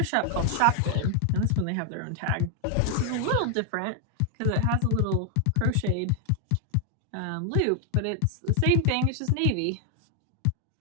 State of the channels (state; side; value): different; both; correlation 0.00